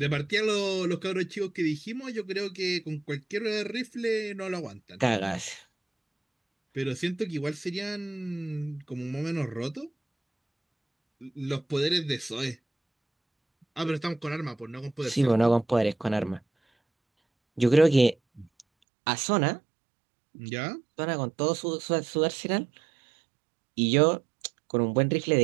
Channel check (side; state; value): left; drops out; at 18.7 s